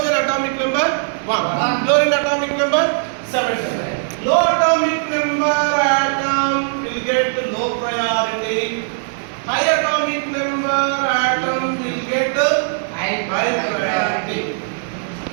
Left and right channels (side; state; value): left; silent; digital silence